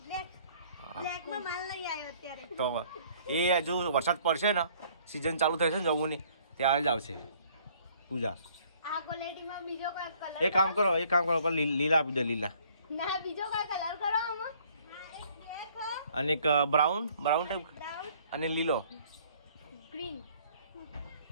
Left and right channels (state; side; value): inverted; both; correlation -0.59